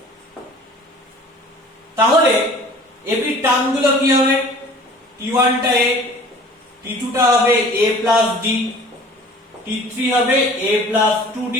তাহলে AP term গুলো কি হবে T1 টা A T2 টা হবে A plus D T3 হবে A plus 2D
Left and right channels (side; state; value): both; normal; correlation 0.47